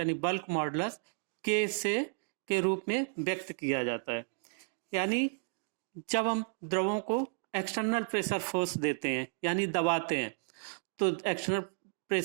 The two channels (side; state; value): left; silent; digital silence